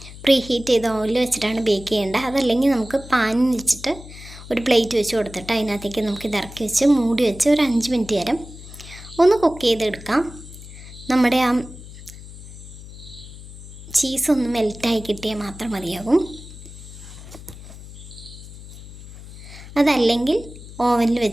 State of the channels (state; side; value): noise; left; hum, 15 dB below the sound